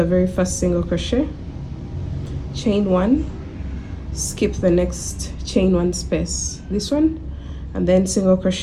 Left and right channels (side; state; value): both; identical; correlation 1.00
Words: very first single crochet, chain 1, skip the next chain one space, this one, and then single